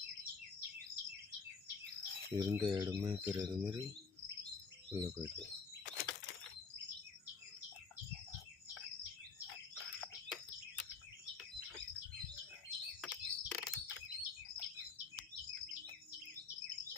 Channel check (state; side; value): quieter; right; 5.0 dB